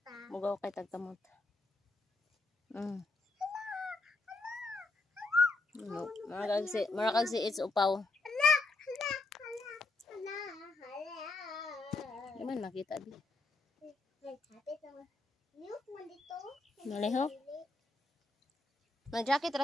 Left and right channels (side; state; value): right; quieter; 3.2 dB